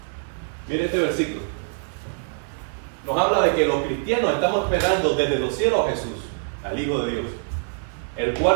Mire este versículo. Nos habla de que los cristianos estamos esperando desde los cielos a Jesús, al Hijo de Dios, el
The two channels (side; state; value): left; silent; digital silence